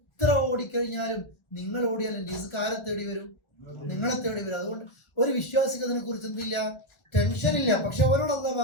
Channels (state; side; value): late; right; 1.4 ms